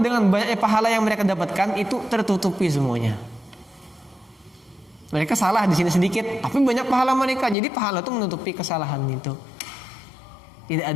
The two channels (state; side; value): drops out; right; at 7.6 s